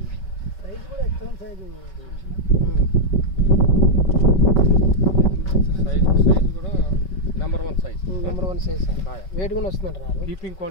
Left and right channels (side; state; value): right; late; 5.3 ms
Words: సైజ్ కూడా ఎక్సలెంట్ సైజు కూడా నెంబర్ 1 సైజ్. సార్. వెయిట్ కూడా వస్తుందంటారు. కీపింగ్